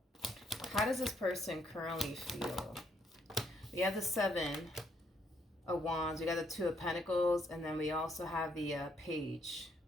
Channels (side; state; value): both; normal; correlation 0.72